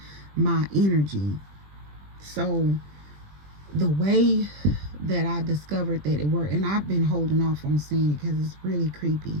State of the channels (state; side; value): late; left; 20 ms